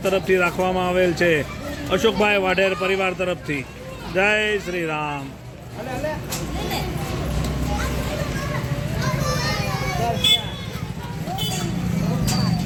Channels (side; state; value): both; identical; correlation 1.00